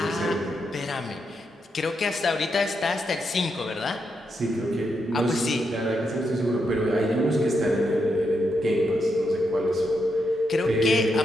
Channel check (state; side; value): normal; both; correlation 0.82